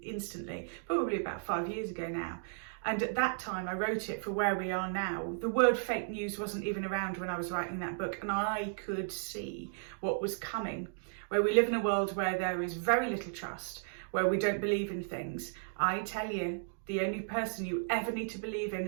Instantly, probably about 5 years ago now. And at that time, I wrote it for where we are now. The word fake news wasn't even around when I was writing that book, and I could see what was coming, where we live in a world where there is very little trust, where we don't believe in things. I tell you, the only person you ever need to believe in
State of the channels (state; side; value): silent; left; digital silence